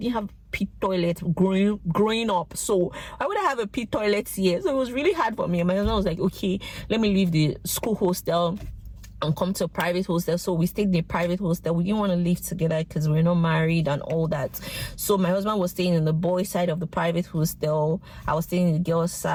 have pit toilet growing up, so I would have a pit toilet here. So it was really hard for me. And my husband was like, "Okay, let me leave the school hostel and come to a private hostel." So we stayed in a private hostel. We didn't want to live together because we're not married and all that. So my husband was staying in the boys' side of the private hostel. I was staying in the girls'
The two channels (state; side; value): identical; both; correlation 1.00